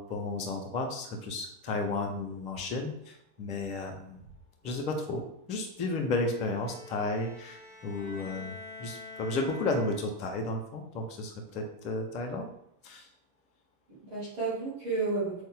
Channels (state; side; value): late; left; 10 ms